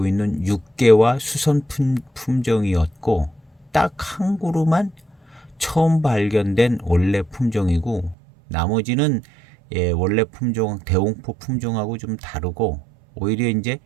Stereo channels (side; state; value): left; drops out; at 8.2 s